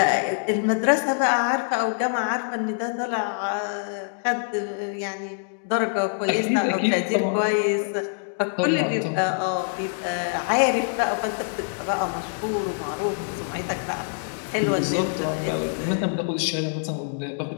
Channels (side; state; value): right; silent; digital silence